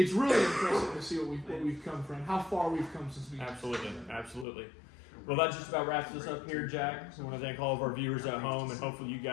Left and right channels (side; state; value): right; drops out; at 4.5 s